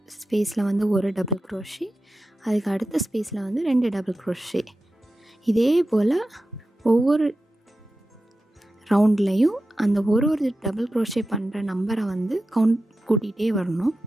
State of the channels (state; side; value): normal; both; correlation 0.92